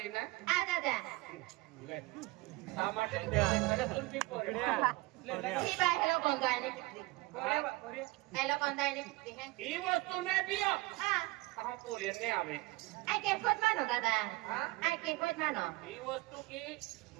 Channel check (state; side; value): quieter; left; 22.1 dB